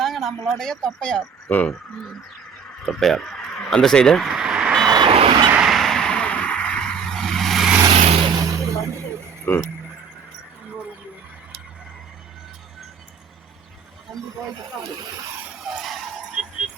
நம்மளுடைய தொப்பையார். தொப்பையார் அந்த சைடு.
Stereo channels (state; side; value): quieter; left; 6.3 dB